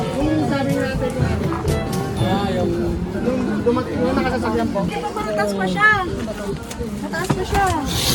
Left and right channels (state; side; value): identical; both; correlation 1.00